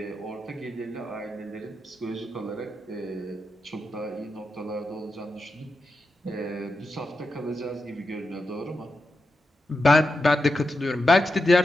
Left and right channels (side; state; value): both; normal; correlation 0.88